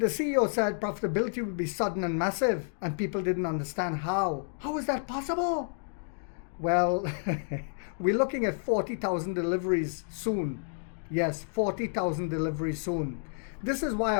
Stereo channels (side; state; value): right; silent; digital silence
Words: CEO said profitability would be sudden and massive, and people didn't understand how. How is that possible? Well, we're looking at 40,000 deliveries soon. Yes, 40,000 deliveries soon. This is why